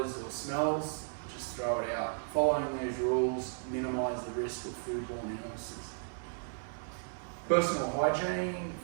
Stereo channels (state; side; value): silent; left; 55 dB below the other